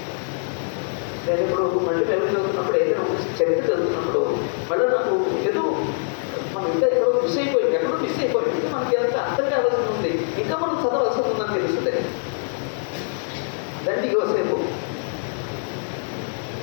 నేను ఇప్పుడు మళ్ళీ వెళ్ళి చదువుతున్నప్పుడు, ఏదైనా చరిత్ర చదువుతున్నప్పుడు మళ్ళీ నాకు ఏదో మనం ఇంకా ఎక్కడో మిస్ అయిపోయింది, మనకి ఎంత అర్థం కావాల్సి ఉంది, ఇంకా మనం చదవాల్సి ఉందని తెలుస్తుంది. దండి యోసేపు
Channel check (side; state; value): right; silent; digital silence